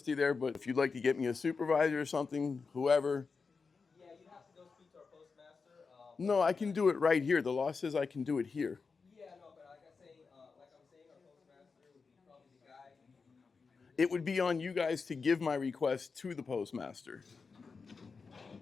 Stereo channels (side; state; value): right; quieter; 4.8 dB